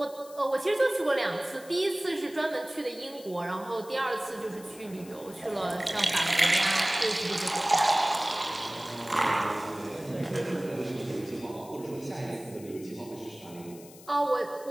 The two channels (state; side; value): noise; left; hiss, 20 dB below the sound